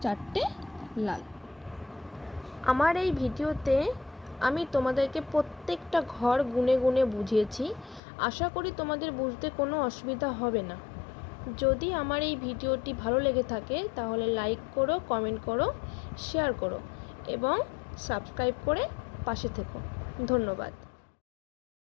চারটে লাল। আমার এই ভিডিওতে আমি তোমাদেরকে প্রত্যেকটা ঘর গুনে গুনে বুঝিয়েছি। আশা করি তোমাদের বুঝতে কোনো অসুবিধা হবে না। যদি আমার এই ভিডিওটি ভালো লেগে থাকে তাহলে লাইক করো, কমেন্ট করো, শেয়ার করো এবং সাবস্ক্রাইব করে পাশে থেকো। ধন্যবাদ।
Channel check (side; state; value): right; drops out; at 8.0 s